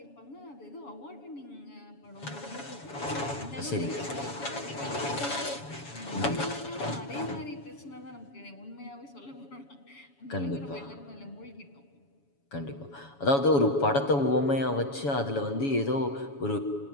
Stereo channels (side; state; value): right; late; 7.1 ms